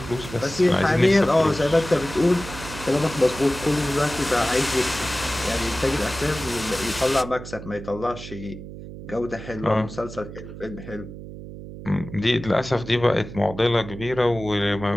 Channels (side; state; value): right; noise; hum, 12 dB below the sound